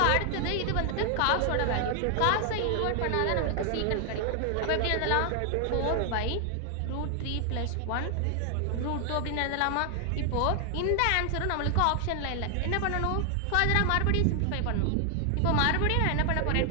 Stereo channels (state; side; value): different; both; correlation 0.00